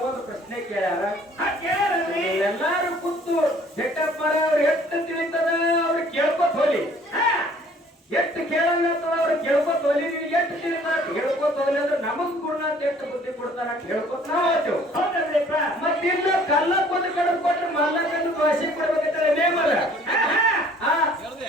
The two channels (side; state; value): both; normal; correlation 0.56